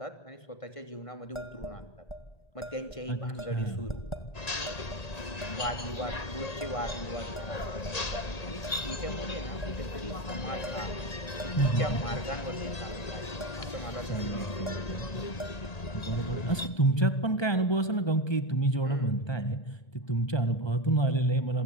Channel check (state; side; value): late; right; 1.8 ms